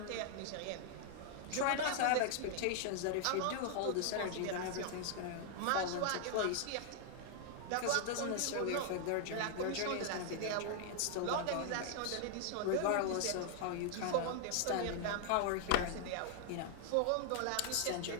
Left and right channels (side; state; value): both; different; correlation 0.00